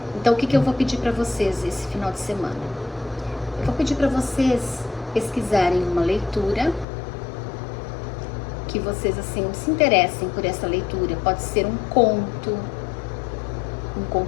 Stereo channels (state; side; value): drops out; right; at 6.9 s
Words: Então, o que eu vou pedir para vocês esse final de semana? Eu vou pedir para vocês pesquisarem uma leitura que vocês, assim, se interessem por essa leitura. Pode ser um conto